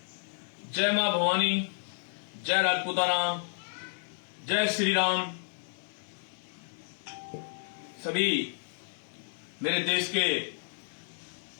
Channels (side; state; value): right; silent; digital silence